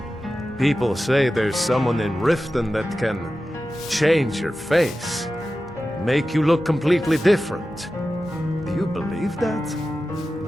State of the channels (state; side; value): normal; both; correlation 0.93